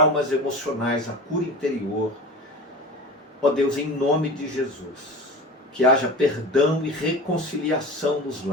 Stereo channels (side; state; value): both; normal; correlation 0.33